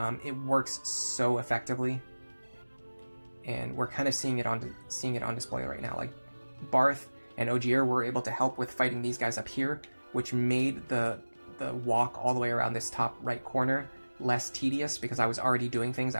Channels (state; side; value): inverted; both; correlation -1.00